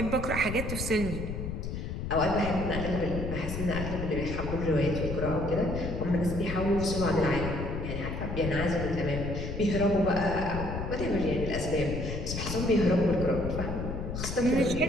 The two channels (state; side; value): noise; left; rumble, 5 dB below the sound